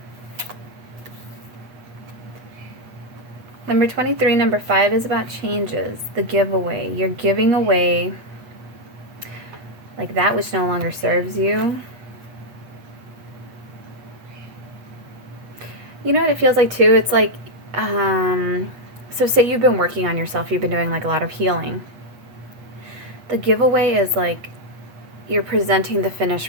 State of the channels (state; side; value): late; left; 8.4 ms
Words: Number 23, number 5 is about changes. The giveaway. You're giving away like that which no longer serves you. You know what it feels like too? It's like, so say you've been working on yourself, you've been doing like a lot of healing. The giveaway is like you're presenting the